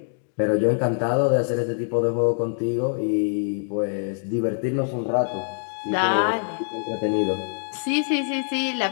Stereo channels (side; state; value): right; silent; digital silence